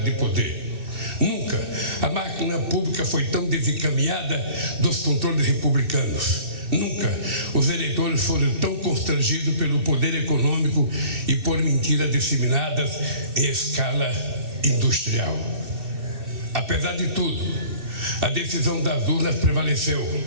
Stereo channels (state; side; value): late; left; 2.6 ms